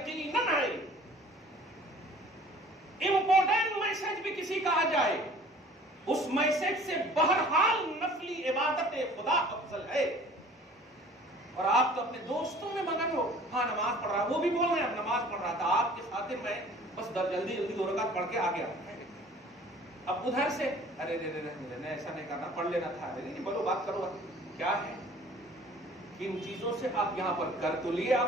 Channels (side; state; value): both; normal; correlation 0.49